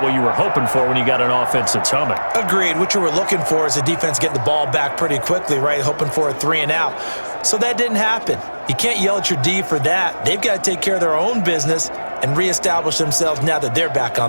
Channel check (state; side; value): inverted; both; correlation -1.00